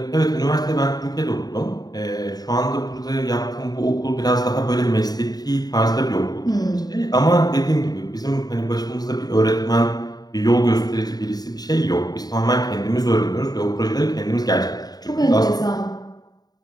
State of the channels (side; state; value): right; late; 0.19 ms